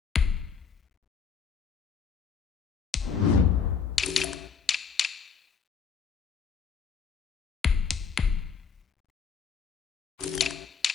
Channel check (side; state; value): right; quieter; 6.2 dB